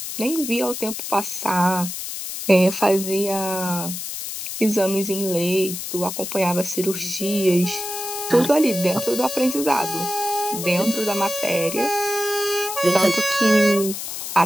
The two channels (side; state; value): left; noise; hiss, 7 dB below the sound